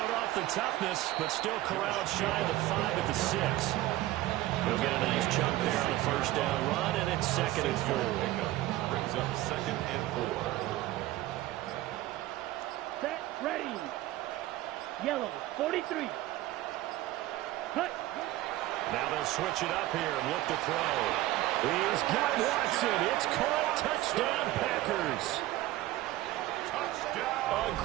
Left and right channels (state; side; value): quieter; left; 16.2 dB